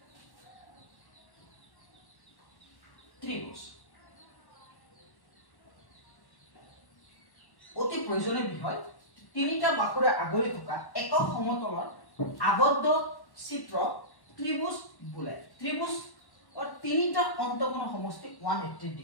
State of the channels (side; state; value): right; late; 1.1 ms